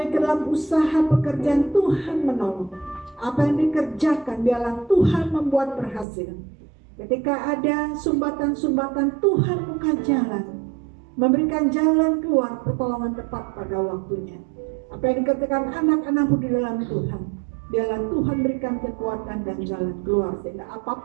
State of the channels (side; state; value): left; drops out; at 6.1 s